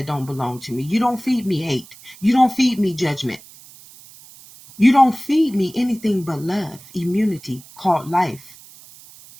don't belong to me. You don't feed me hate. You don't feed me judgment. You don't feed me anything but love, immunity, called life.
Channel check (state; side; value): noise; right; hiss, 21 dB below the sound